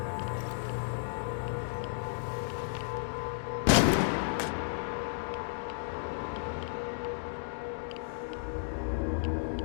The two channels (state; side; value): silent; right; digital silence